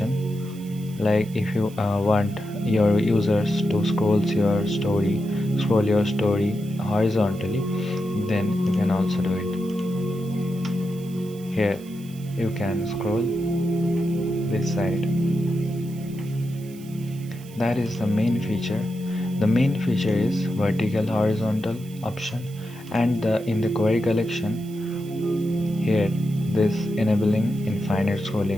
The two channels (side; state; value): right; noise; hiss, 22 dB below the sound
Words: like if you want your users to scroll your story horizontally, then you can also do it. Here you can scroll this side. That is the main feature. The main feature is vertical horizontal option, and in the query collection here this enabling infinite